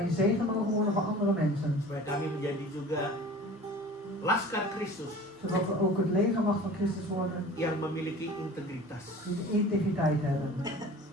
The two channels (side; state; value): both; normal; correlation 0.42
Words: een zegen mogen worden voor andere mensen. Supaya kami menjadi juga laskar Kristus Zodat we ook het legermacht van Christus worden yang memiliki integritas. die de integriteit hebben.